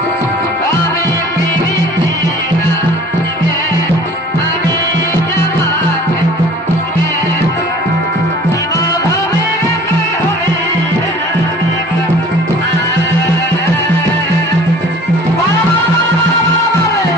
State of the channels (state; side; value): normal; both; correlation 0.48